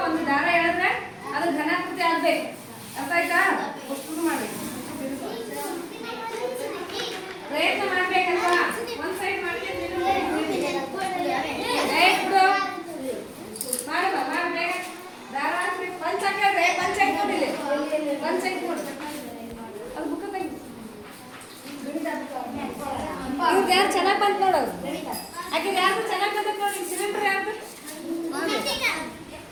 ಒಂದು ದಾರ ಹೇಳಿದ್ರೆ ಅದು ಘನಾಕೃತಿ ಆಗಬೇಕು ಅರ್ಥ ಆಯ್ತಾ ಶುರು ಮಾಡಬೇಕು ಪ್ರಯತ್ನ ಮಾಡ್ಬೇಕಲ್ವಾ ಒಂದು ಸೈಡ್ ಮಾಡ್ತೀನಿ ಮಾಡುವ ಮಾಡಬೇಕ ದಾರ ಹಾಕ್ಬೇಕು ಪಂಚ ಹಾಕಿದ್ರೆ ಪಂಚ ಹಾಕ್ಬಿಟ್ಟಿಲ್ಲ ಪಂಚ ಹಾಕ್ಬಿಡು ಅದು ಬುಕ್ಕ ತೆಗಿ ಇವ್ರು ಯಾರು ಚೆನ್ನಾಗಿ ಬಂತು ನೋಡು ಆಕೆ ಯಾರು ಚೆನ್ನಾಗಿ ಬಂದಕ್ಕೆ ನೋಡಿ ಸಿಲಿಂಡರ್ ಯಾರು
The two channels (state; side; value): identical; both; correlation 1.00